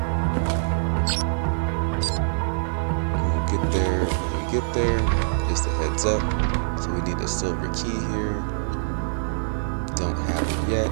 when we get there, just a heads up. So we need a silver key here. Don't have it yet.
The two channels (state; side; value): silent; left; digital silence